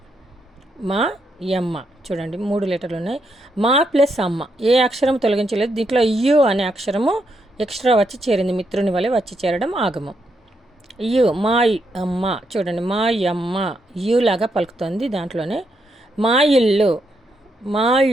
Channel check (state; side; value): normal; both; correlation 0.79